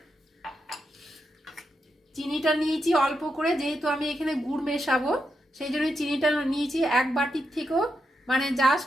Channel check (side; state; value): both; normal; correlation 0.85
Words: চিনিটা নিয়েছি অল্প করে, যেহেতু আমি এখানে গুড় মেশাবো সেই জন্য চিনিটা নিয়েছি 1 বাটির থেকেও